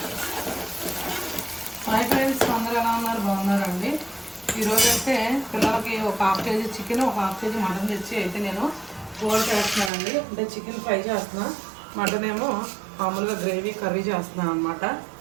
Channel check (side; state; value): left; drops out; at 9.9 s